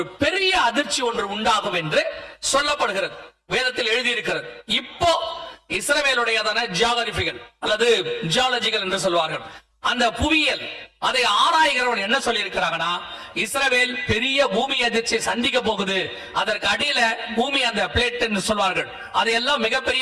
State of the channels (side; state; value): both; identical; correlation 1.00